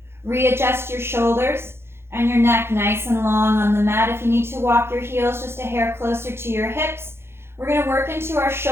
Readjust your shoulders and your neck nice and long on the mat. If you need to walk your heels just a hair closer to your hips, we're going to work into our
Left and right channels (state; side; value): late; left; 0.12 ms